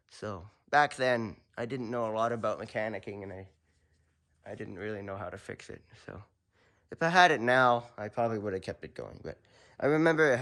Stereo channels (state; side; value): identical; both; correlation 1.00